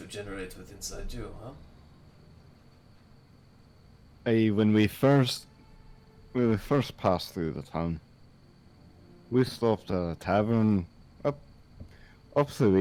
generate with inside you, huh? When we first passed through the town, we stopped at a tavern up the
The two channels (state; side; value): identical; both; correlation 1.00